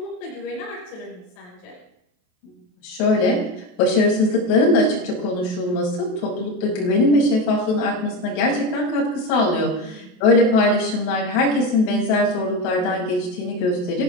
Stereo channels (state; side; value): late; right; 28 ms